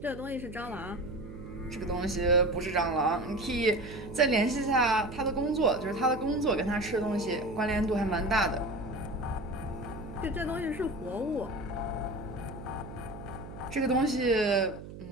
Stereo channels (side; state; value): right; noise; hum, 13 dB below the sound